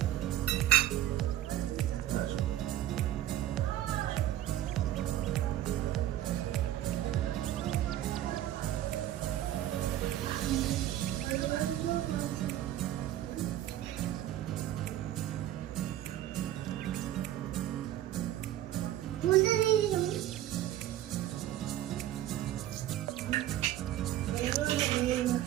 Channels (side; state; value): left; quieter; 13.0 dB